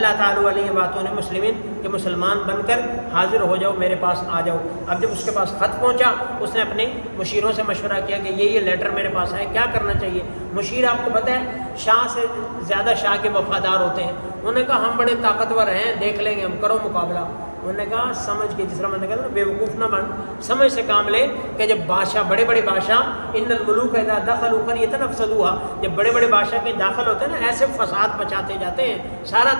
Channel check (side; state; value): both; inverted; correlation -1.00